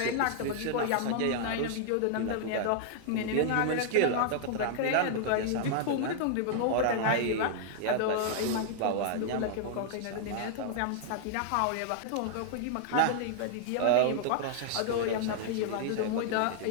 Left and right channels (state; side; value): different; both; correlation -0.01